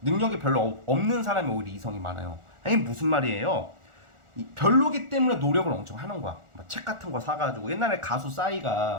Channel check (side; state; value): left; late; 1.4 ms